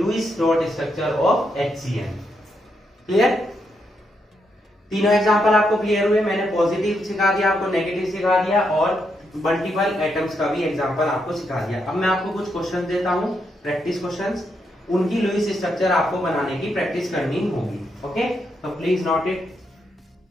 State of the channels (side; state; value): both; normal; correlation 0.80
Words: dot structure of HCl। Clear. तीनों एग्जांपल आपको क्लियर हुए, मैंने पॉजिटिव सिखा दिया, आपको नेगेटिव सिखा दिया, और मल्टीपल एटम्स का भी एग्जांपल आपको सिखा दिया। अब मैं आपको कुछ क्वेश्चन देता हूं, प्रैक्टिस क्वेश्चंस, उनकी लुईस स्ट्रक्चर आपको बनाने की प्रैक्टिस करनी होगी। ओके, तो please note it.